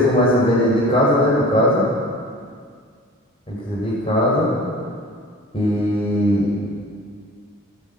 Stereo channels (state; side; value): normal; both; correlation 0.40